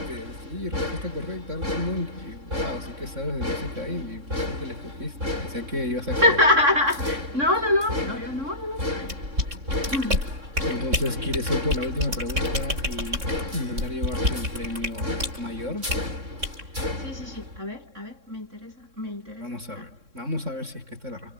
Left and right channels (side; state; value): left; late; 3.6 ms